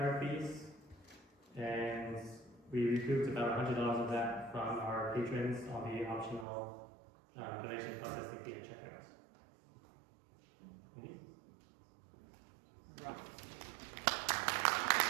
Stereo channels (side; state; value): left; drops out; at 6.5 s